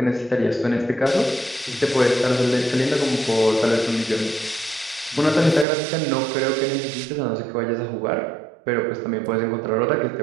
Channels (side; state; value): left; drops out; at 5.7 s